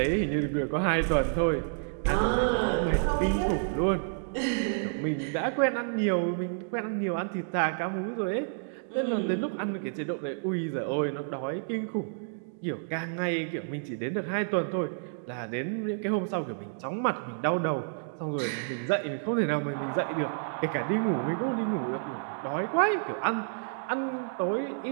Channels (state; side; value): silent; left; digital silence